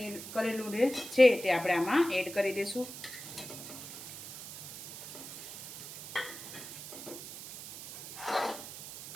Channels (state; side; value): noise; right; hiss, 11 dB below the sound